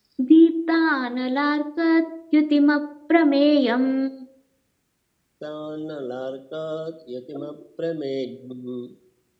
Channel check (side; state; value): both; identical; correlation 1.00